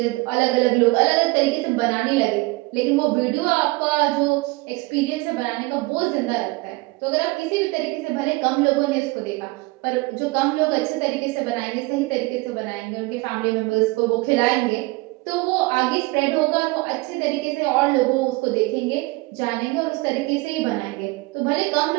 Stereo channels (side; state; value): left; quieter; 23.2 dB